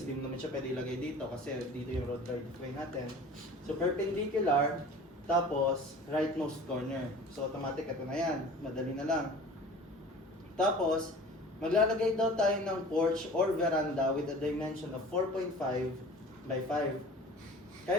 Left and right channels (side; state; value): both; normal; correlation 0.42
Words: di mo naman siya pwede ilagay dito kasi dito yung road right-of-way natin. So, perpendicular, tapos, rightmost corner. So, automatic, ito na yan. Madali na lang. Tapos, maglalagay daw tayo ng porch or veranda with a dimension of 4.5 by 5.